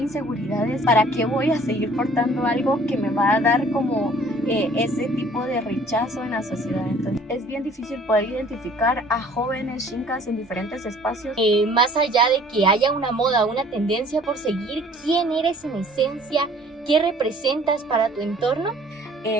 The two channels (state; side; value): normal; both; correlation 0.53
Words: inseguridades. ¿Para qué voy a seguir portando algo que me va a dar como ese tipo de rechazo en la sociedad? Entonces es bien difícil poder identificar a jóvenes chincas en diferentes espacios. Más allá de que haya una moda, una tendencia por seguir, ¿quién eres en esencia? ¿Qué representas para tu entorno?